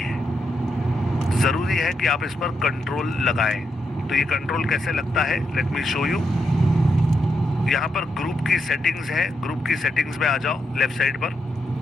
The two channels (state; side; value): normal; both; correlation 0.82